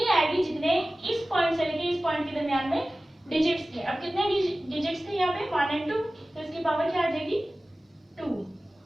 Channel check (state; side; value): normal; both; correlation 0.97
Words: आएगी जितने इस पॉइंट से लेके इस पॉइंट के दरमियान में डिजिट्स थे. अब कितने डिजिट्स थे यहाँ पे, 1 और 2, तो इसकी पावर क्या आ जाएगी, 2